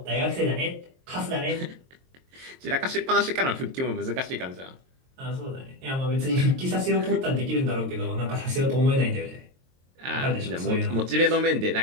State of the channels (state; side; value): late; left; 22 ms